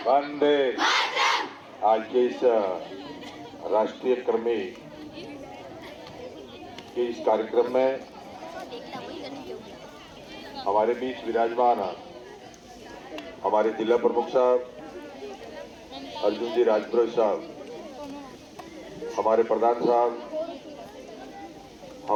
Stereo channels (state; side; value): identical; both; correlation 1.00